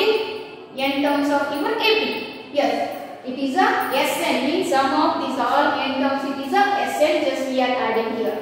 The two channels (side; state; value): both; identical; correlation 1.00